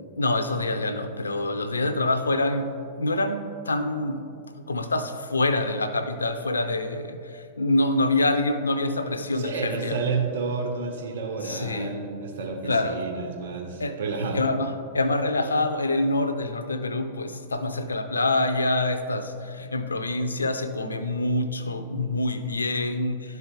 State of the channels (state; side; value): inverted; both; correlation -0.67